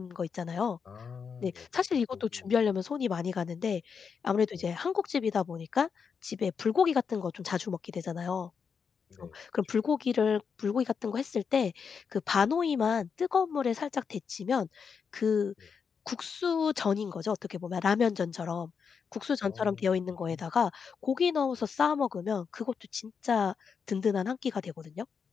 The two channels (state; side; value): quieter; right; 6.2 dB